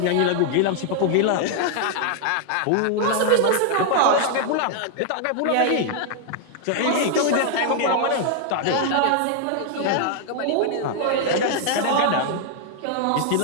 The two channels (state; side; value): different; both; correlation 0.00